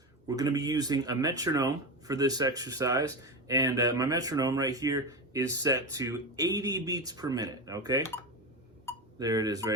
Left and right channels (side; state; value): both; normal; correlation 0.18